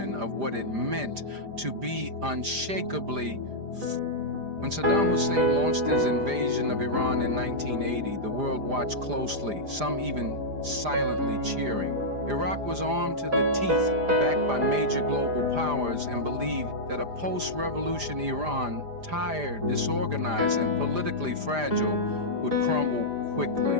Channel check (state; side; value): late; left; 4.9 ms